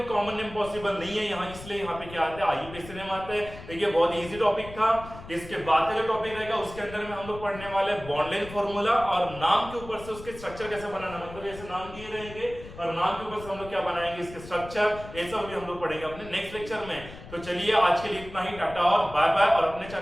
कॉमन नेम पॉसिबल नहीं है यहाँ, इसलिए यहाँ पे क्या आता है आईयूपीएसी नेम आता है। देखिए बहुत इजी टॉपिक था। इसके बाद का जो टॉपिक रहेगा उसके अंदर में हम लोग पढ़ने वाले बॉन्ड लेंथ फार्मूला और नाम के ऊपर से उसके स्ट्रक्चर कैसे बनाना, मतलब ऐसे नाम दिए रहेंगे और नाम के ऊपर से हम लोग क्या बनाएंगे इसके स्ट्रक्चर, ये सब भी हम लोग पढ़ेंगे अपने नेक्स्ट लेक्चर में। तो चलिए आज के लिए इतना ही, टाटा और बाय बाय, और अपने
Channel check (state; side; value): noise; left; rumble, 15 dB below the sound